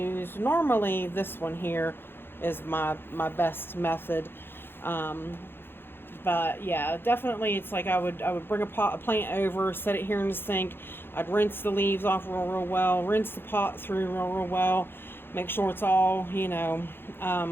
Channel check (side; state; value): right; late; 0.10 ms